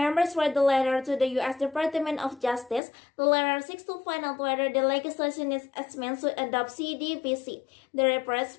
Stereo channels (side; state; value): right; drops out; at 2.8 s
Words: read the letter to the U.S. Department of Justice. The letter seeks to find out whether the legislation is meant to adopt CDPC. The request